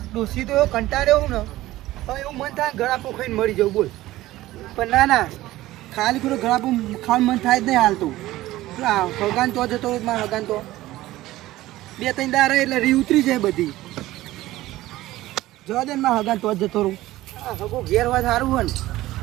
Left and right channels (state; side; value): quieter; left; 16.5 dB